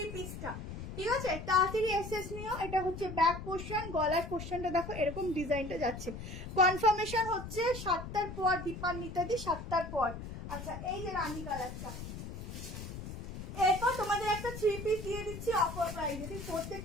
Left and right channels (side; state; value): left; noise; rumble, 9 dB below the sound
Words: পিসটা, ঠিক আছে, তাড়াতাড়ি এসএস নিও। এটা হচ্ছে ব্যাক পোর্শন, গলার পোর্শনটা দেখো এরকম ডিজাইনটা যাচ্ছে। কনফার্মেশন হচ্ছে 7টার পর, দীপান্বিতাদি 7টার পর। আচ্ছা এই যে রানী কালারটা, এরপর তোমাদের একটা 3 পিস দিয়ে দিচ্ছি অফার প্রাইস, ঠিক